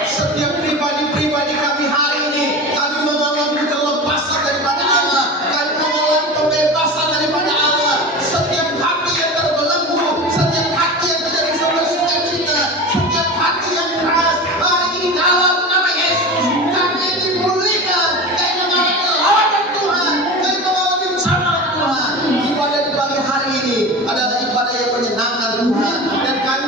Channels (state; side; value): normal; both; correlation 0.30